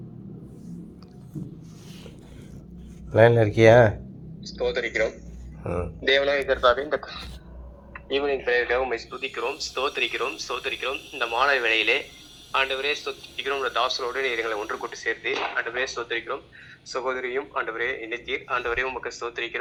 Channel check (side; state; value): both; identical; correlation 1.00